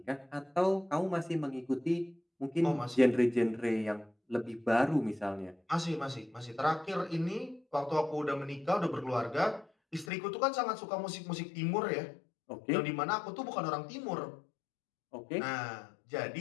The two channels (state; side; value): drops out; right; at 10.1 s